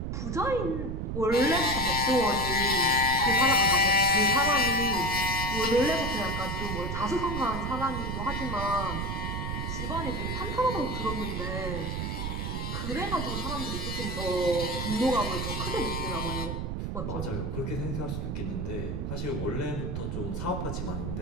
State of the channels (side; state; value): right; noise; rumble, 3 dB below the sound